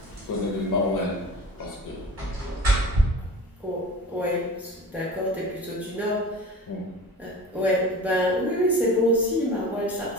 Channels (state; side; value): normal; both; correlation 0.38